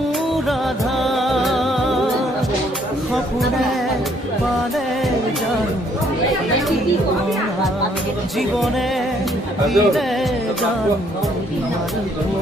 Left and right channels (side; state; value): both; normal; correlation 0.66